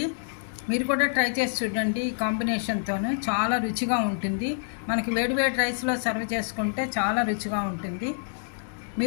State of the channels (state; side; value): silent; right; digital silence